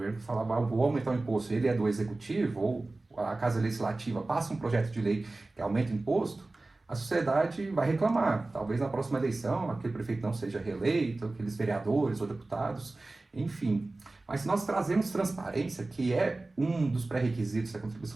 falava, vou aumentar o imposto, ele é do executivo, ou a Casa Legislativa passa um projeto de lei que aumenta o imposto, a sociedade vai reclamar. Talvez na próxima eleição aquele prefeito não seja reeleito, aqueles vereadores ou deputados, enfim. Mas se nós trazemos transparência, que é um dos pré-requisitos da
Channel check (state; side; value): quieter; left; 3.1 dB